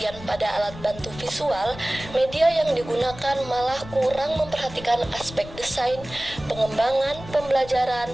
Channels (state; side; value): noise; left; rumble, 15 dB below the sound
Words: pada alat bantu visual, media yang digunakan malah kurang memperhatikan aspek desain, pengembangan, pembelajaran,